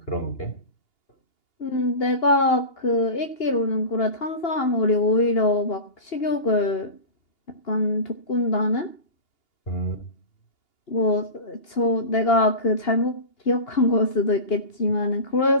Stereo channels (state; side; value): late; right; 2.8 ms